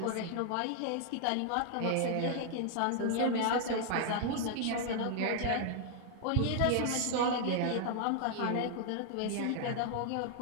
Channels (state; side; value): different; both; correlation 0.00